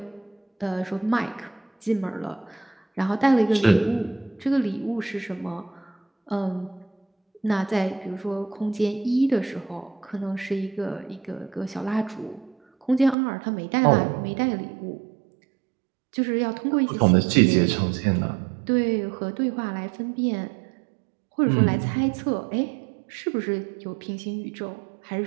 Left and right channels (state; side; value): drops out; left; at 13.2 s